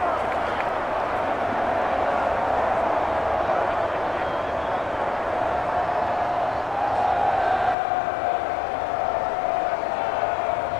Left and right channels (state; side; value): drops out; right; at 7.8 s